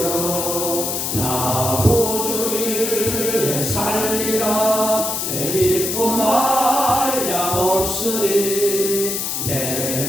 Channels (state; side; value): noise; left; hiss, 2 dB below the sound